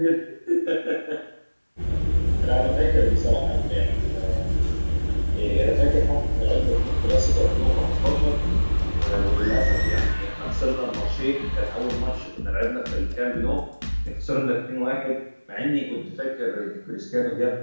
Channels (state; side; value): inverted; both; correlation -1.00